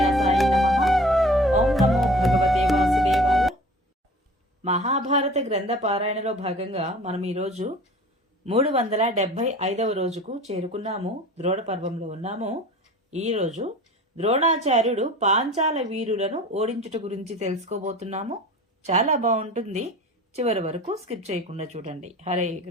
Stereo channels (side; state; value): both; normal; correlation 0.43